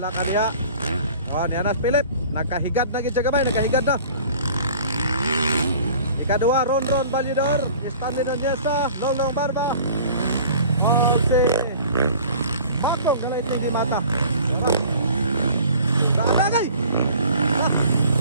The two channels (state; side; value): inverted; both; correlation -0.48